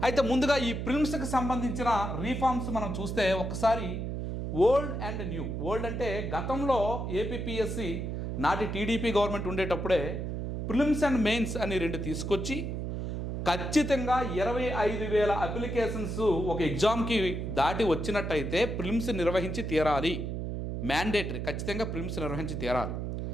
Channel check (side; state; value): right; noise; hum, 3 dB below the sound